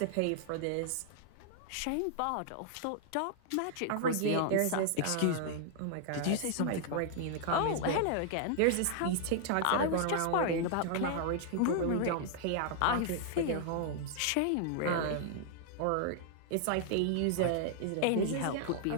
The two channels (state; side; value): different; both; correlation -0.01